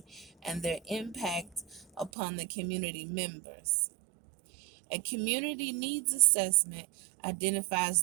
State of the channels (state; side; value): drops out; left; at 2.1 s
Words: and their impact upon the community members. A community needs assessment